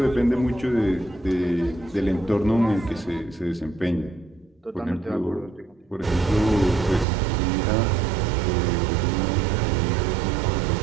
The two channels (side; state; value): left; drops out; at 7.1 s